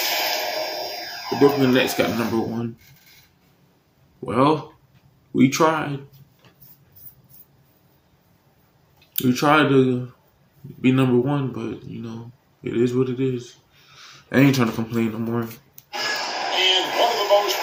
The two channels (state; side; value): identical; both; correlation 1.00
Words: The Brooklyn Nets got number 1. Well, we tried. We tried to be number 1, but, you know, it is what it is. I ain't trying to complain no more. And one of the most